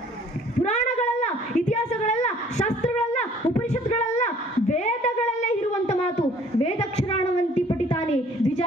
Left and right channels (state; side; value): normal; both; correlation 0.56